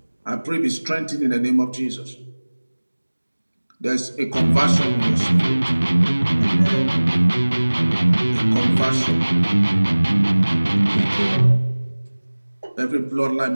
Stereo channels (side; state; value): both; inverted; correlation -1.00